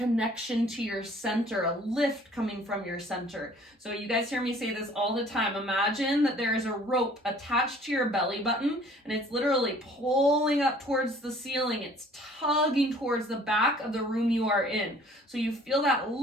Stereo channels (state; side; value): normal; both; correlation 0.54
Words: to your center, a lift coming from your center. So you guys hear me say this all the time. Imagine that there is a rope attached to your belly button and it's literally pulling up towards the ceiling. It's tugging towards the back of the room you are in. So you feel that